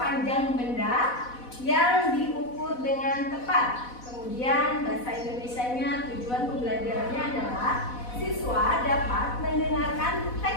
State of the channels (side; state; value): right; late; 4.1 ms